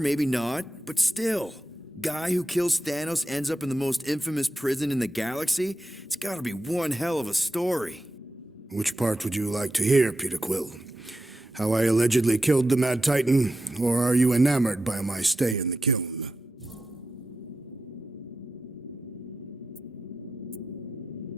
not, but still. Guy who kills Thanos ends up in the most infamous prison in the galaxy? It's gotta be one hell of a story. Which part would you like to hear, Peter Quill? How I allegedly killed the Mad Titan, or are you enamored by my stay in the kiln?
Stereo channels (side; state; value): both; normal; correlation 0.89